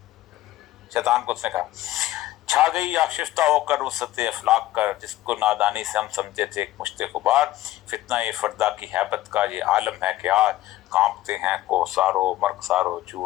شیطان کو اس نے کہا چھا گئی آشفتہ ہو کر وسط افلاق کر، جس کو نادانی سے ہم سمجھتے تھے ایک مشت غبار. فتنہ فردا کی ہیبت کا یہ عالم ہے کہ آج کانپتے ہیں کوسارو مرغسارو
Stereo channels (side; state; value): right; quieter; 15.4 dB